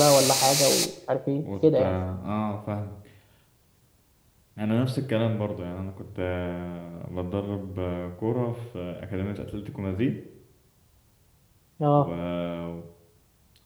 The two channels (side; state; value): both; identical; correlation 1.00